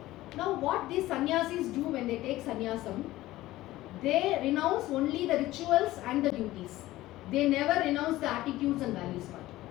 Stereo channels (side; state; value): right; quieter; 16.6 dB